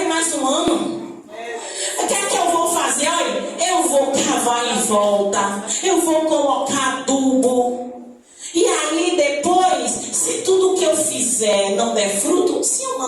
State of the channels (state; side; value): identical; both; correlation 1.00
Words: mais um ano. O que é que eu vou fazer? Olha, eu vou cavar em volta. Eu vou colocar adubo. E aí depois, se tudo que eu fizer não der fruto, se eu